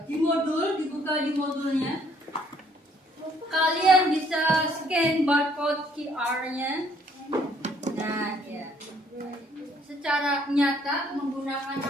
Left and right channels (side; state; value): both; normal; correlation 0.64